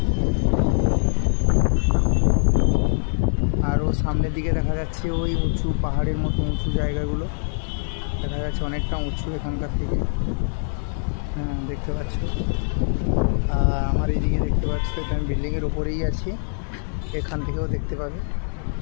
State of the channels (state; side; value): silent; right; digital silence